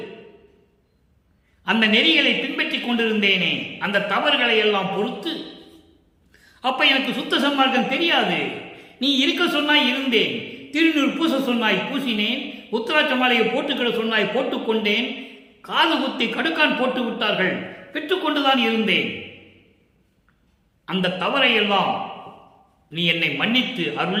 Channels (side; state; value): both; identical; correlation 1.00